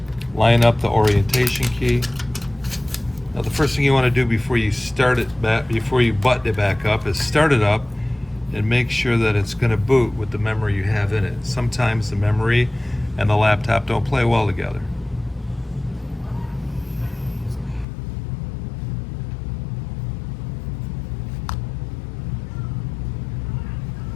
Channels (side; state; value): right; drops out; at 17.9 s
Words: line up the orientation key. Now the first thing you want to do before you start it back, before you button it back up, is start it up and make sure that it's going to boot with the memory you have in it. Sometimes the memory and the laptop don't play well together.